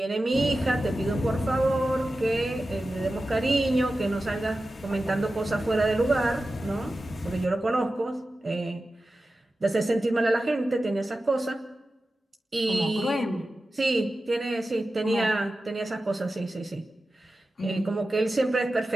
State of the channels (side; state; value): both; normal; correlation 0.94